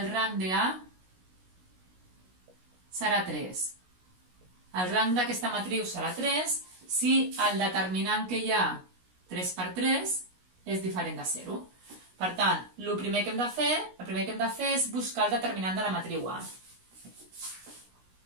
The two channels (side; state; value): left; late; 16 ms